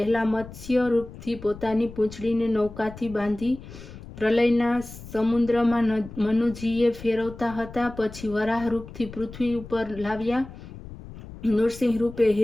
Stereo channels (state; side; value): noise; left; rumble, 15 dB below the sound